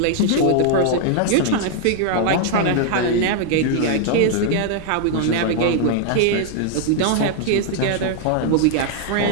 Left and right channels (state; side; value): different; both; correlation 0.00